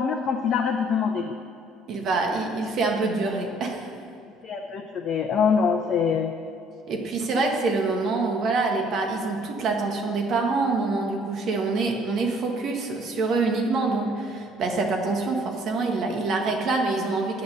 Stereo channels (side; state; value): both; normal; correlation 0.60